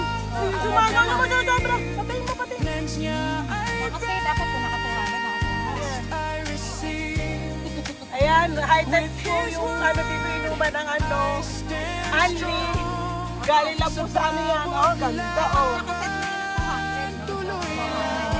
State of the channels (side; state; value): both; identical; correlation 1.00